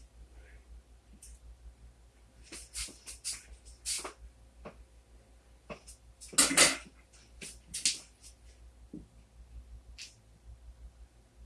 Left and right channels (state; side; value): identical; both; correlation 1.00